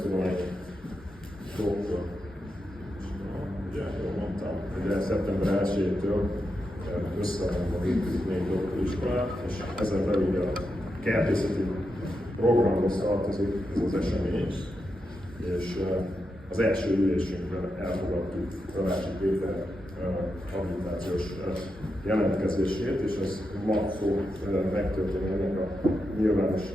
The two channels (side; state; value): both; normal; correlation 0.86